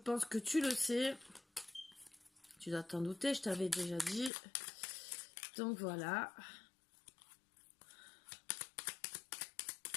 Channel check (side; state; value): right; drops out; at 4.3 s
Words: que tu le sais. Tu dois t'en douter, je t'avais déjà dit. Donc voilà.